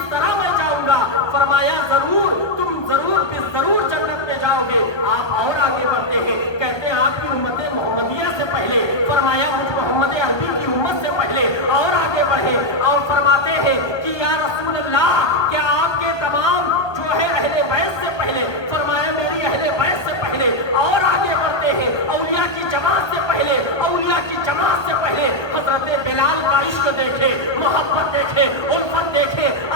طرح میں جاؤں گا؟ فرمایا ضرور، تم ضرور جنت میں جاؤ گے۔ آپ اور آگے بڑھتے ہیں، کہتے ہیں آپ کی امت محمدیہ سے پہلے، فرمایا مجھ محمد عربی کی امت سے پہلے اور آگے بڑھے، اور فرماتے ہیں کہ یا رسول اللہ کیا آپ کے تمام جو ہے اہل بیت سے پہلے؟ فرمایا میری اہل بیت سے پہلے، اور آگے بڑھتے ہیں اولیاء کی جماعت سے پہلے، اولیاء کی جماعت سے پہلے۔ حضرت بلال کا عشق دیکھے، محبت دیکھے، الفت دیکھے،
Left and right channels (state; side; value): late; right; 1.3 ms